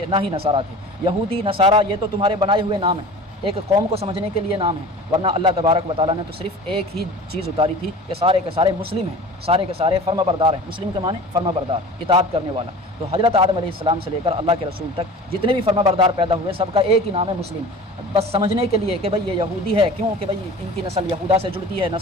نہ ہی نصارہ تھے۔ یہودی نصارہ یہ تو تمہارے بنائے ہوئے نام ہیں، ایک قوم کو سمجھنے کے لیے نام ہے، ورنہ اللہ تبارک و تعالیٰ نے تو صرف ایک ہی چیز اتاری تھی کہ سارے کے سارے مسلم ہیں، سارے کے سارے فرما بردار ہیں۔ مسلم کے معنی فرما بردار، اطاعت کرنے والا۔ تو حضرت آدم علیہ السلام سے لے کر اللہ کے رسول تک جتنے بھی فرما بردار پیدا ہوئے سب کا ایک ہی نام ہے مسلم۔ بس سمجھنے کے لیے کہ بھئی یہ یہودی ہے، کیوں کہ بھئی ان کی نسل یہودا سے جڑتی ہے،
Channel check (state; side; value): normal; both; correlation 0.39